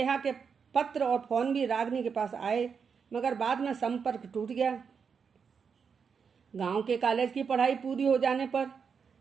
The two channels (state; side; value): quieter; left; 6.2 dB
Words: के पत्र और फोन भी रागनी के पास आए, मगर बाद में संपर्क टूट गया। गांव के कॉलेज की पढ़ाई पूरी हो जाने पर